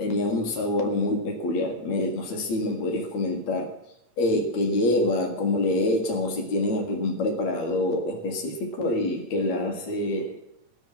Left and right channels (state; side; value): late; right; 8.8 ms